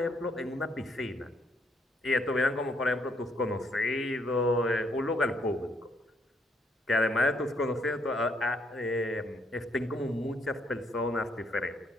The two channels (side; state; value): both; normal; correlation 0.71